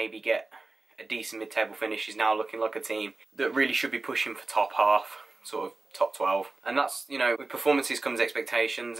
get a decent mid-table finish is now looking like a team that really should be pushing for top half, sort of top 12. And that's, you know, with performances comes expectations,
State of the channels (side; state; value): left; quieter; 3.4 dB